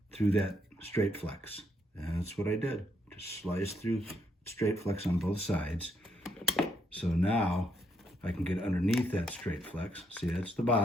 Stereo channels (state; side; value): normal; both; correlation 0.75